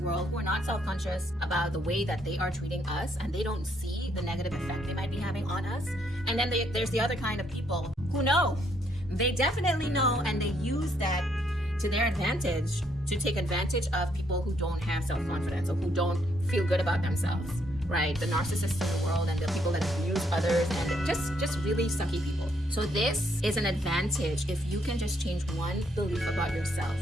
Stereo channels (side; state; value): both; normal; correlation 0.72